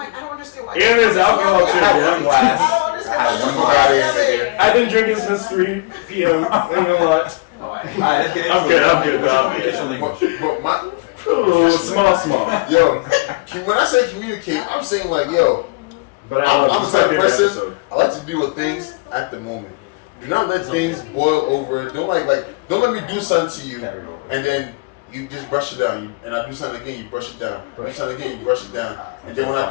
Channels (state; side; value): quieter; right; 27.3 dB